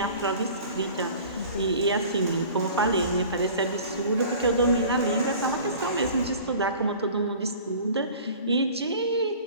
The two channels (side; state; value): both; inverted; correlation -0.44